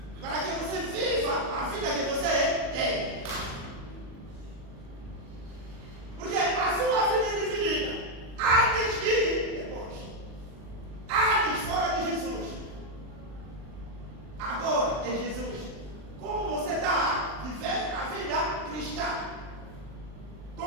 Para que você viva a vida que você tem. Porque a sua vida é dividida antes e depois. Antes fora de Jesus. Agora em Jesus. Como você está vivendo a vida cristã?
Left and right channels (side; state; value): left; late; 39 ms